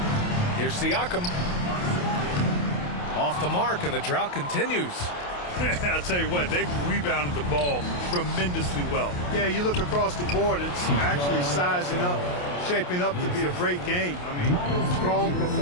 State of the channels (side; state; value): right; late; 28 ms